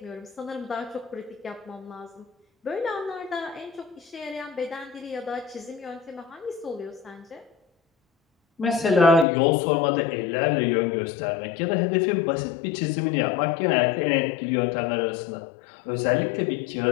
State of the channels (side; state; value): right; drops out; at 9.2 s